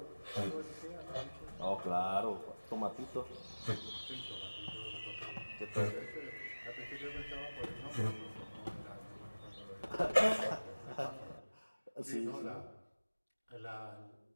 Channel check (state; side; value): inverted; both; correlation -1.00